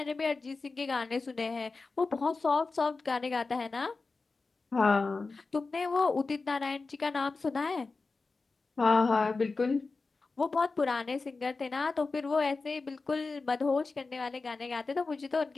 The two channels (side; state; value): right; quieter; 4.0 dB